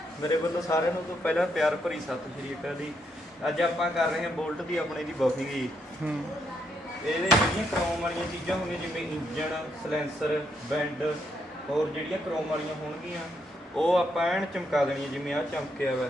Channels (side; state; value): both; normal; correlation 0.76